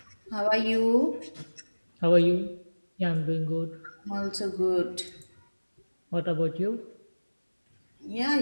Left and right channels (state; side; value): inverted; both; correlation -1.00